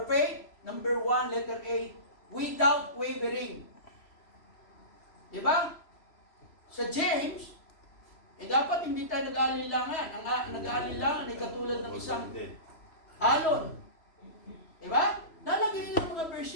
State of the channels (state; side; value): late; right; 3.0 ms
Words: faith? Number 1, letter A, without wavering. Diba? Sa James, dapat hindi tayo nag-aalilangan. Ang nag-aalilangan ay katulad ng isang alon. Diba? Nalagyan niyo ng mga